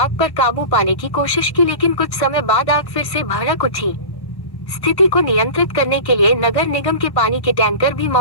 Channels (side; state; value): right; late; 1.1 ms